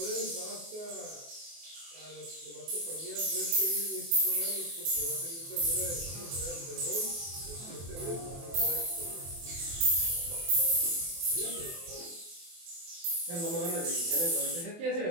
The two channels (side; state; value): left; late; 24 ms